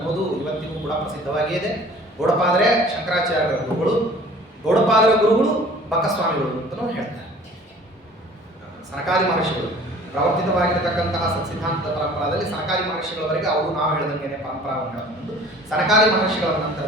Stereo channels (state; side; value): normal; both; correlation 0.49